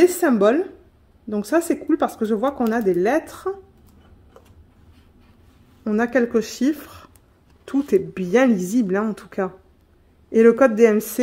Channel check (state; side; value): identical; both; correlation 1.00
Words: symboles. Donc ça, c'est cool parce que je vois qu'on a des lettres. On a quelques chiffres. Tout est bien lisible, hein, en tout cas. Et le code DMC,